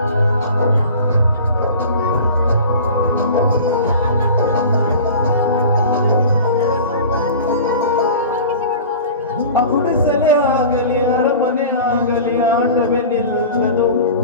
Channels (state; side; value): inverted; both; correlation -0.38